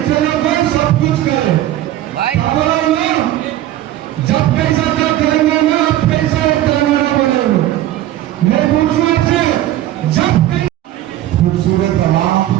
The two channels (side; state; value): left; quieter; 13.7 dB